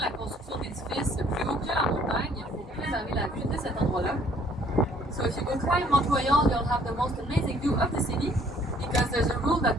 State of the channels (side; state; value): both; normal; correlation 0.60